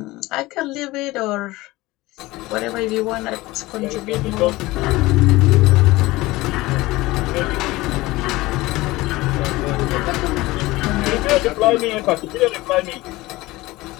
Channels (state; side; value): quieter; right; 19.6 dB